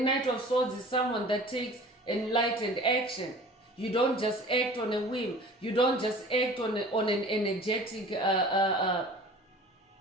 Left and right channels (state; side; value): normal; both; correlation 0.44